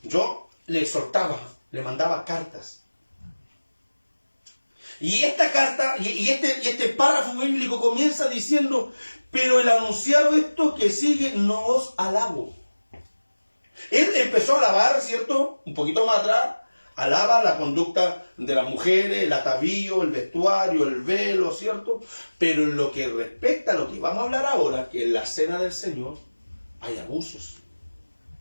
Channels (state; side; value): inverted; both; correlation -1.00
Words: yo le exhortaba, le mandaba cartas. Y esta carta, y este párrafo bíblico comienza diciendo: pero el anunciar esto que sigue no os alabo. Él empezó a alabar, ¿cierto?, un poquito más atrás, alaba la conducta de las mujeres, el atavío, el vestuario, el velo, ¿cierto? Pero en lo que respecta a lo que vamos a hablar ahora, que en la cena del Señor hay abusos.